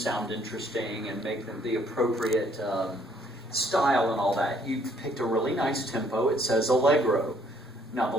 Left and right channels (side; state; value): both; normal; correlation 0.64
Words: interesting and make them the appropriate style and all that? You picked a really nice tempo. It says allegro. Now, the